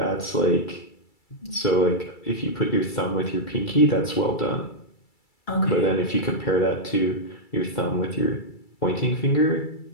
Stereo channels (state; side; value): late; right; 2.3 ms